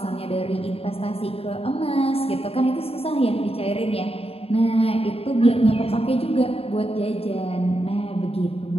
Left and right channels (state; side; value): late; right; 0.28 ms